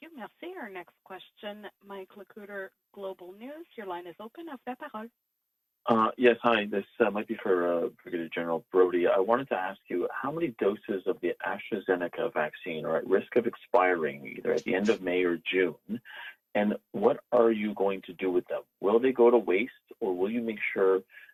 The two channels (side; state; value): both; identical; correlation 1.00